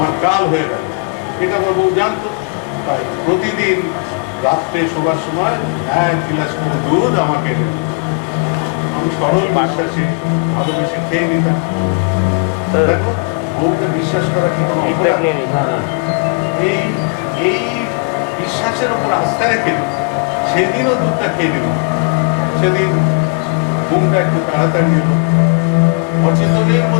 কাল হয়ে গেল। এটা আমার বউ জানতো, তাই প্রতিদিন রাত্রে শোবার সময় 1 গ্লাস করে দুধ আমাকে এনে দিত। আমি সরল বিশ্বাসে ভালোবেসে খেয়ে নিতাম। দেখো, বউকে বিশ্বাস করা কি কোনো অপরাধ? এই এই বিশ্বাসের উপর আস্থা রেখে সেদিনও দুধটা খেয়ে নিল। সেদিন ঘুমটা একটু তাড়াতাড়ি এলো, অচেতনের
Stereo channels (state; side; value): quieter; right; 33.1 dB